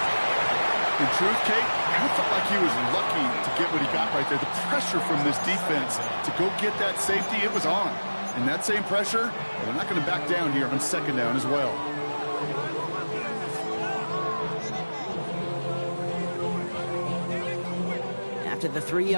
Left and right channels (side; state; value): both; inverted; correlation -1.00